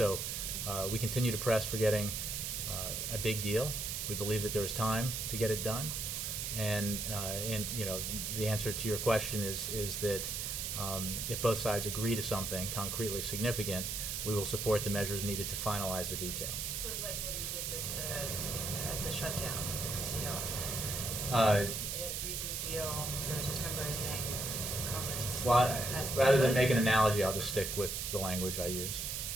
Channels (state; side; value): noise; right; hiss, 2 dB below the sound